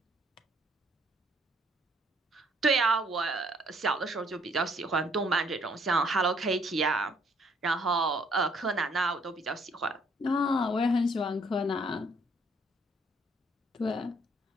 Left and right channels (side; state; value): both; normal; correlation 0.65